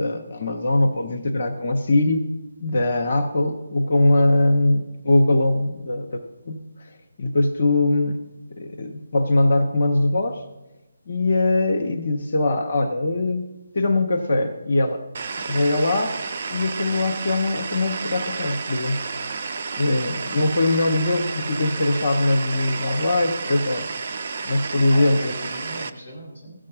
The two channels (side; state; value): both; inverted; correlation -0.90